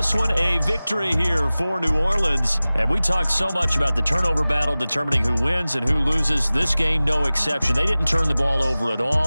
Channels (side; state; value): both; inverted; correlation -0.98